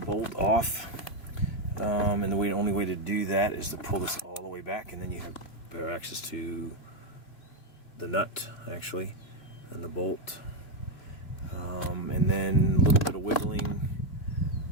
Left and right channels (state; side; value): late; right; 2.3 ms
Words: off, and the only way to do that is to pull this all the way back, and then you have better access to the nut, actually, and the bolt, and then a little bit of wiggling,